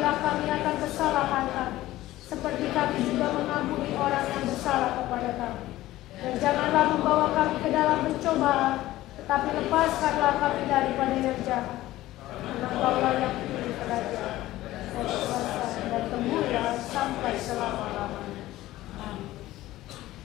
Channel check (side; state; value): right; quieter; 16.0 dB